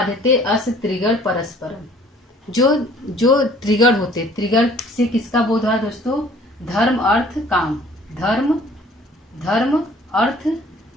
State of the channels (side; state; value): both; normal; correlation 0.54